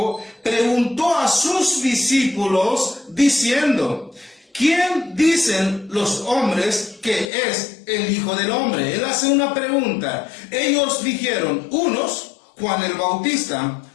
preguntó a sus discípulos diciendo: ¿quién dicen los hombres que es el Hijo del Hombre? Él hace una pregunta. Ellos dijeron: unos, Juan el Bautista;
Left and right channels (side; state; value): right; drops out; at 7.3 s